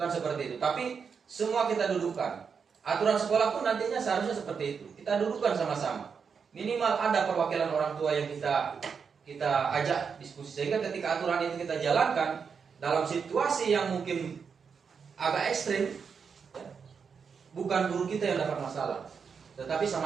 seperti itu. Tapi semua kita dudukkan. Aturan sekolah pun nantinya seharusnya seperti itu. Kita dudukkan sama-sama. Minimal ada perwakilan orang tua yang kita ajak diskusi, sehingga ketika aturan itu kita jalankan dalam situasi yang mungkin agak ekstrim, ya, bukan guru kita yang dapat masalah, tetapi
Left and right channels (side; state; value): left; quieter; 6.1 dB